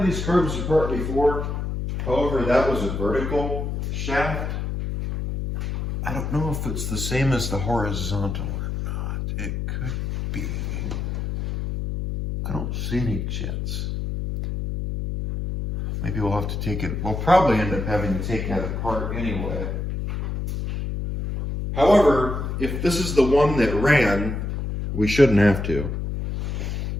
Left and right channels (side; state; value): left; noise; hum, 3 dB below the sound